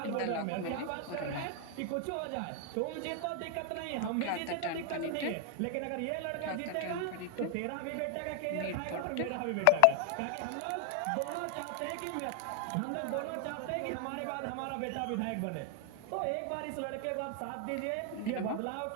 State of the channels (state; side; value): different; both; correlation 0.00